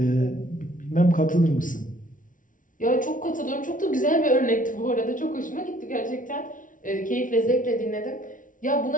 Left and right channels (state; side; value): late; right; 0.38 ms